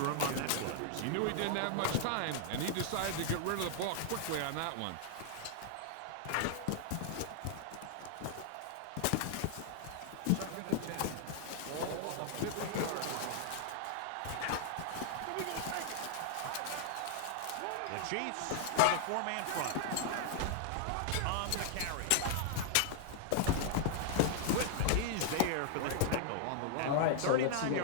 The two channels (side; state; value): both; different; correlation -0.01